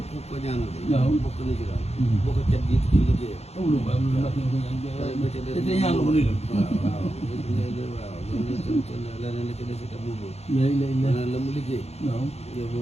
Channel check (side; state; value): right; late; 0.31 ms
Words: ko ñaanal waaw bokk na ci daal boo ko cat jiitu ci liggéeyam amul ba amul ndax ñu ko ñaan te ñaan la ko nuyu waaw leneen la ci des itam moom la mu liggéey waaw yow